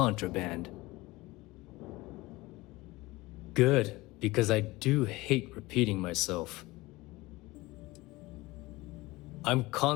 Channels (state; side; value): quieter; right; 20.7 dB